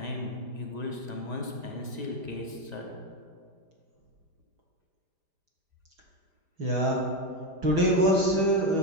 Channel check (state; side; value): late; left; 5.0 ms